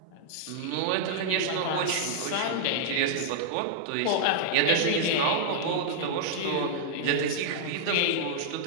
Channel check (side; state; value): both; different; correlation -0.01